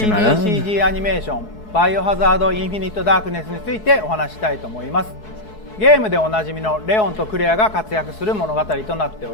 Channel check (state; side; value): late; right; 4.7 ms